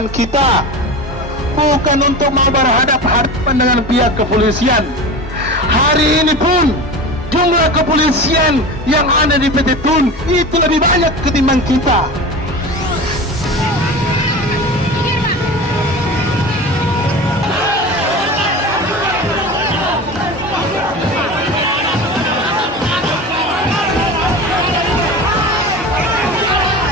kita, bukan untuk mau berhadapan dengan pihak kepolisian. Hari ini pun jumlah kepolisian yang ada di PT Tun itu lebih banyak ketimbang kita.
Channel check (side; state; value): both; normal; correlation 0.31